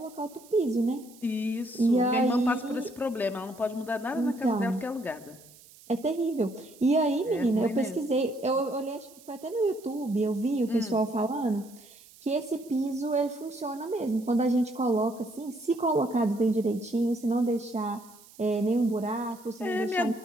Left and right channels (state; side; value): noise; right; hiss, 23 dB below the sound